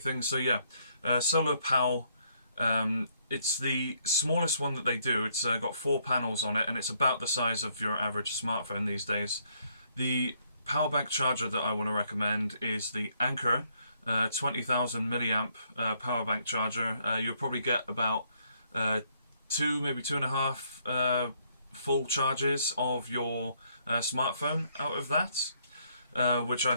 so yeah. Solar Pal, it's the smallest one that they do. It's got 4 panels on it, and it's about the size of your average smartphone these days. The power bank charger that I want to recommend is the Anker 20,000 milliamp power bank charger. You'll probably get about 2, maybe 2.5 full charges of your smartphone out of that, which I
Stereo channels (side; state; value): both; inverted; correlation -0.70